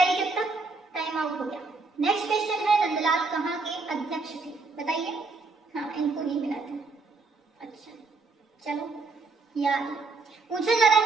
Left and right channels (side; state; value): left; quieter; 3.9 dB